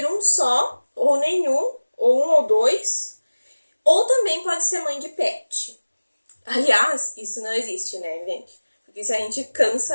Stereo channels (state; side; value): inverted; both; correlation -1.00